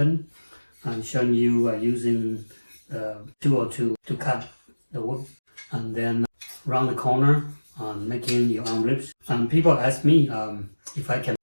I'm showing you using the tool to cut the wood and then round the corner making your own ribs. And people ask me if I can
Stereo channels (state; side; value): inverted; both; correlation -1.00